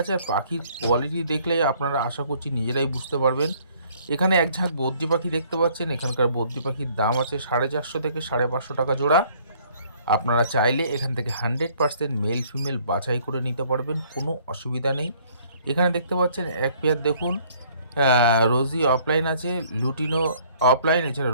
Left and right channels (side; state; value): both; inverted; correlation -0.61